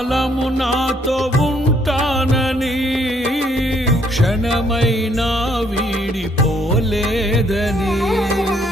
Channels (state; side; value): normal; both; correlation 0.68